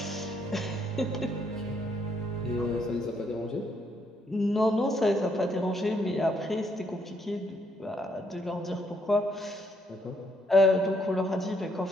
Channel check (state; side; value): normal; both; correlation 0.72